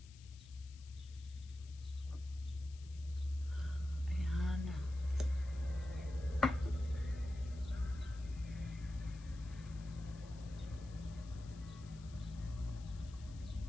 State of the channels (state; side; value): noise; left; hiss, 22 dB below the sound